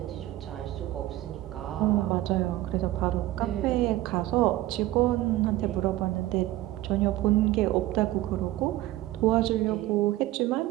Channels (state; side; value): quieter; left; 16.1 dB